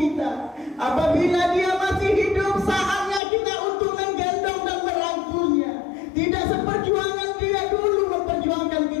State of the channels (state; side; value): drops out; right; at 3.2 s